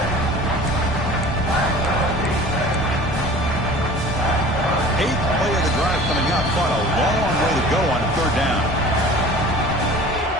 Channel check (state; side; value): normal; both; correlation 0.43